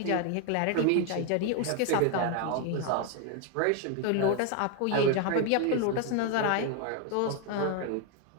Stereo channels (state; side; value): different; both; correlation 0.01